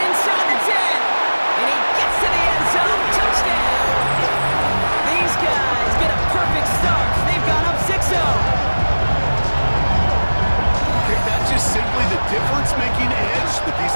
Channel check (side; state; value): both; inverted; correlation -1.00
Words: inside the 10. And he gets to the end zone. Touchdown. These guys get a perfect start. They've gone up 6-0. That's just simply the difference-making edge that